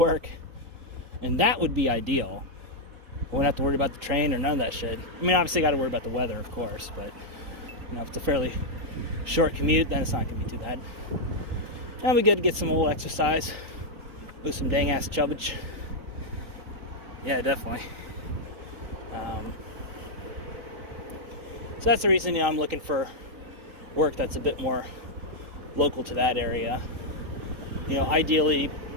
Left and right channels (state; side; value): late; left; 4.1 ms